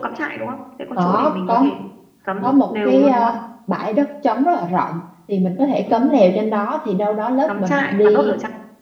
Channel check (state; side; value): identical; both; correlation 1.00